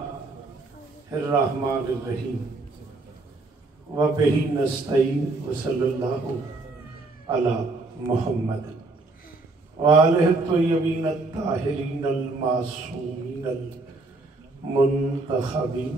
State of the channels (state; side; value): quieter; left; 3.3 dB